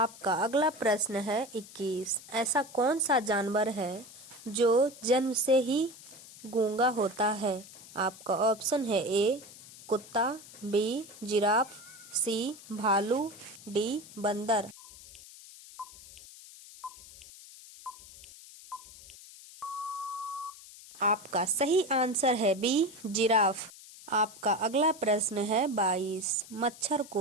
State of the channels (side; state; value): left; noise; hiss, 18 dB below the sound